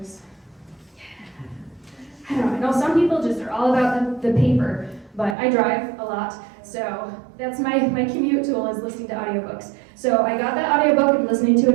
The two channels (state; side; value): drops out; left; at 5.4 s